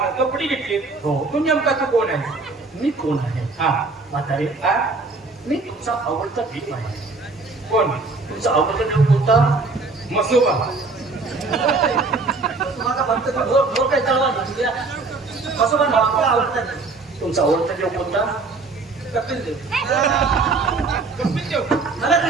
कपडे घेतली. तू नेमका तू कोण आहे? मी कोण आहे? हा म्हातारे मी तुमचा आवडता देव आहे. कोण? तुमचा आवडता देव कोणता? मसोबा. तुमचा आवडता देव कोणता? कपिल देव. कपिल देव मला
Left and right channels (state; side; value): quieter; left; 3.8 dB